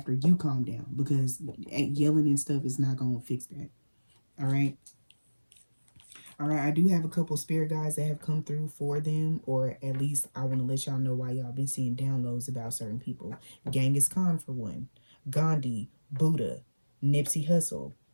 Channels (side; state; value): both; inverted; correlation -1.00